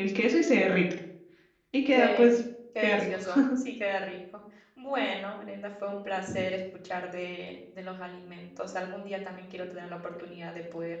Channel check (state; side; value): identical; both; correlation 1.00